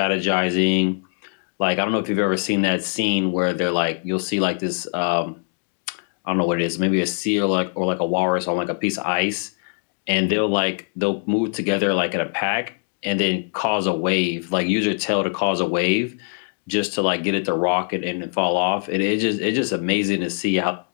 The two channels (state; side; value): silent; right; digital silence